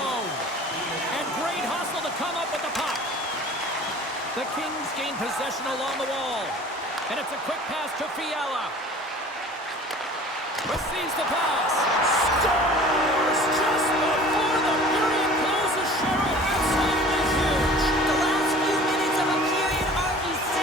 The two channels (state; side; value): normal; both; correlation 0.45